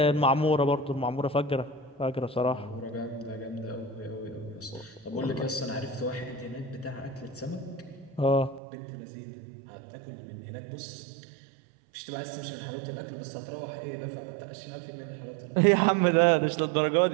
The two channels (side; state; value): left; drops out; at 8.6 s